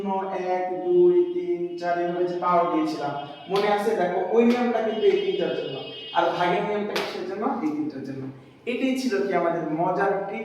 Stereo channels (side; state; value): both; identical; correlation 1.00